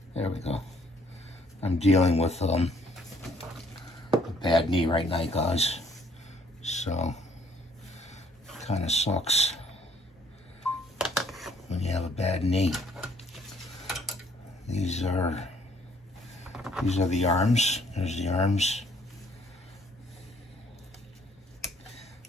There we go. I'm dealing with a bad knee right now, guys. So, kind of sucks when you have a bad knee. These are the arms. There's the arms.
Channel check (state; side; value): normal; both; correlation 0.63